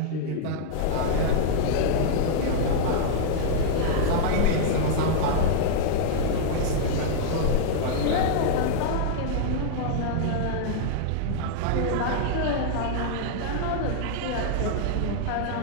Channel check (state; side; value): different; both; correlation -0.01